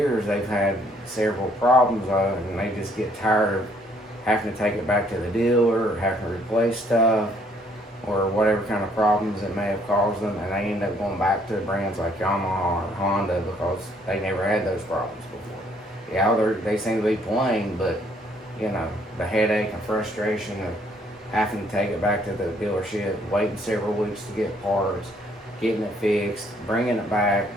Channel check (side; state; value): both; normal; correlation 0.65